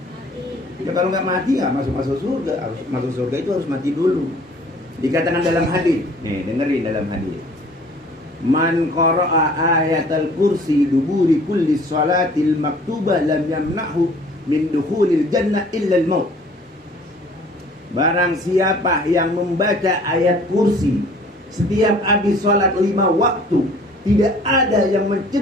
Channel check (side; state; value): both; normal; correlation 0.53